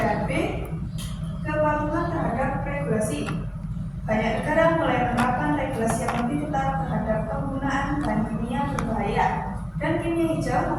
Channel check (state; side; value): identical; both; correlation 1.00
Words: B, kepatuhan terhadap regulasi. Banyak negara mulai menerapkan regulasi yang lebih ketat terhadap penggunaan bahan kimia berbahaya, dan kimia hijau